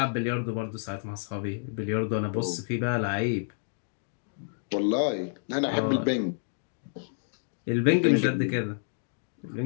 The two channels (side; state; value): right; silent; digital silence